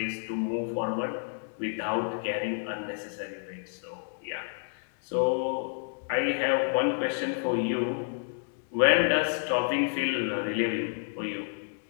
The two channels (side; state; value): right; silent; digital silence